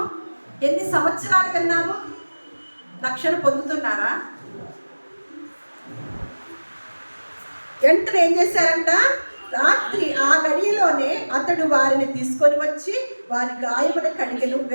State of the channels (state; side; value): inverted; both; correlation -1.00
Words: ఎన్ని సంవత్సరాలు విన్నాము? రక్షణ పొందుతున్నారా? వెంటనే ఏం చేశారంట? రాత్రి ఆ గడియలోనే అతడు వారిని తీసుకొని వచ్చి వారి గాయమును కడిగెను.